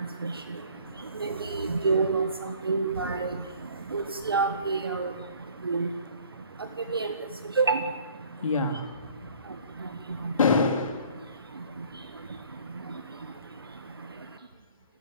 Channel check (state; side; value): inverted; both; correlation -0.54